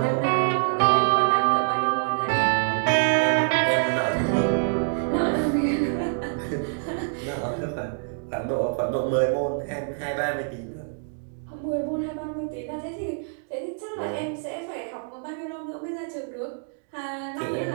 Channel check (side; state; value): left; silent; 61 dB below the other